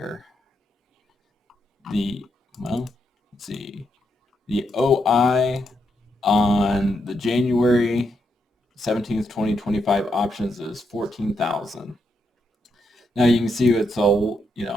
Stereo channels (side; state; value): both; normal; correlation 0.80